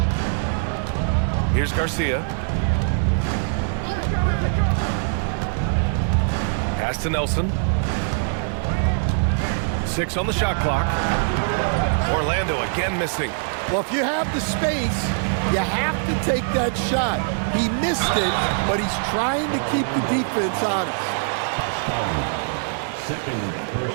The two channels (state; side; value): silent; left; 64 dB below the other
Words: Here's Garcia. Pass to Nelson. 6 on the shot clock. Orlando again missing. Well, if you have the space, you have to take that shot. He missed it, but he's trying to keep the defense honest. Second